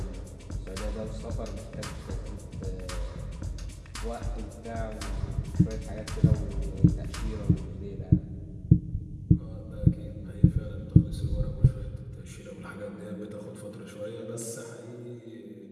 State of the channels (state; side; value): identical; both; correlation 1.00